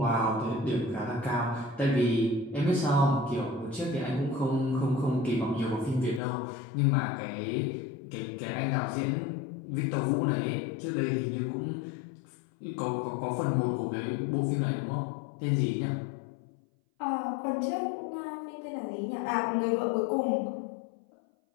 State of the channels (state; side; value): drops out; right; at 6.2 s